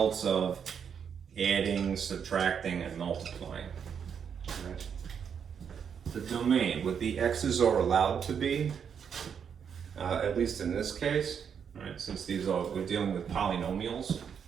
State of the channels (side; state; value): left; quieter; 7.4 dB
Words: of adding, subtracting, and multiplying. Right. The domain, what the x's are allowed to be, at least in this case, right, since we're dealing with polynomials.